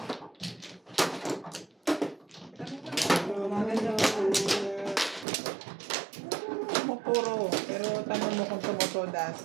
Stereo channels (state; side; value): drops out; left; at 5.2 s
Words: Puro. Pero tanong mo kung tumutodas.